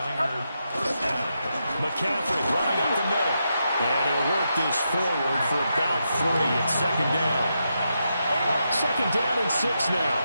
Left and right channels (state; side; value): inverted; both; correlation -0.84